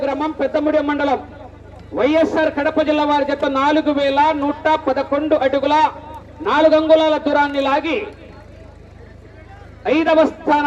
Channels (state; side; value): identical; both; correlation 1.00